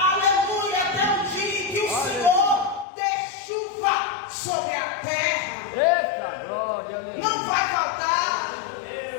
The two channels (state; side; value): drops out; right; at 2.9 s